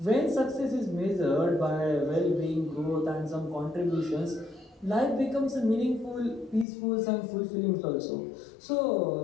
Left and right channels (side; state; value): right; drops out; at 6.7 s